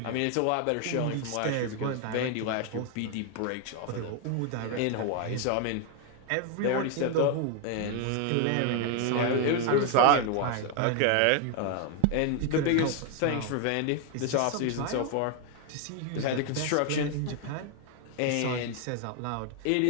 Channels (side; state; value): both; different; correlation 0.01